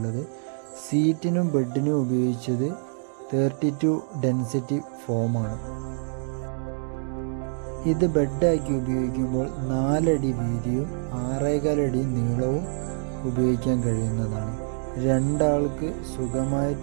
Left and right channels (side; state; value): left; silent; digital silence